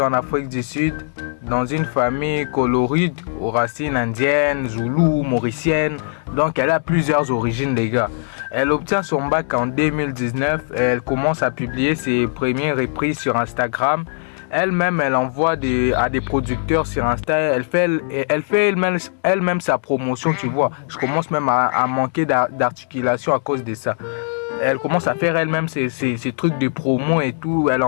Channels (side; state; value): right; silent; digital silence